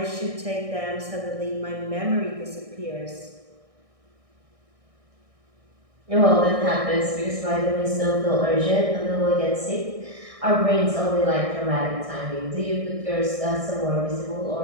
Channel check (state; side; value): late; left; 1.6 ms